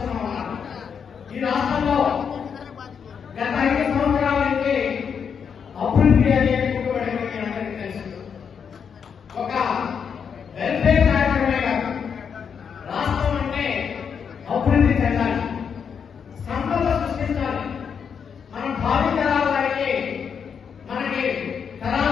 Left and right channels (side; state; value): right; quieter; 6.9 dB